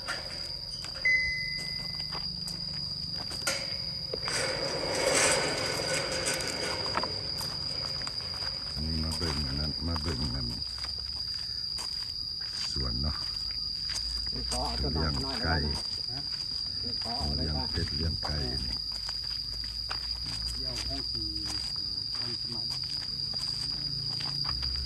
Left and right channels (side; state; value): both; identical; correlation 1.00